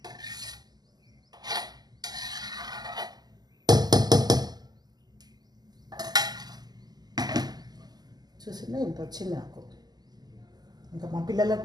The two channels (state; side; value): late; left; 0.20 ms